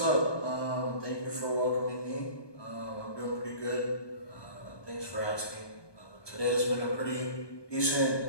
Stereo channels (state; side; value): late; right; 1.2 ms